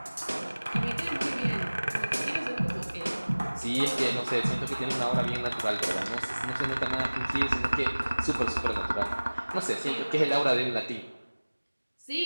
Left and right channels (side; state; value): both; inverted; correlation -1.00